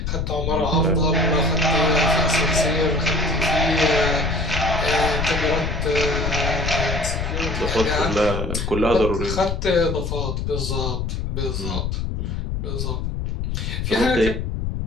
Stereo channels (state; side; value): noise; left; rumble, 2 dB below the sound